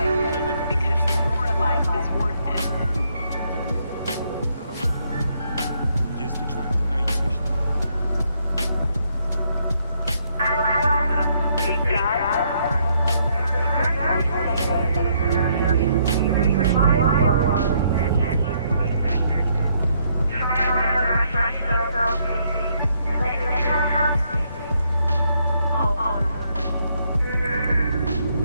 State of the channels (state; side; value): inverted; both; correlation -0.72